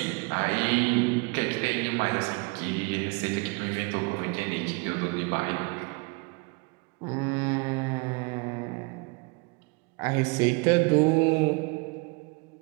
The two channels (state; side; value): quieter; left; 29.7 dB